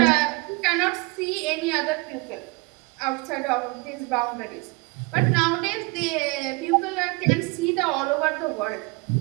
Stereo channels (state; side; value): quieter; left; 26.1 dB